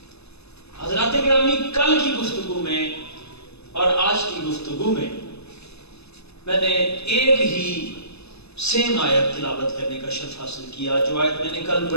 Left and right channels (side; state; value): right; late; 0.79 ms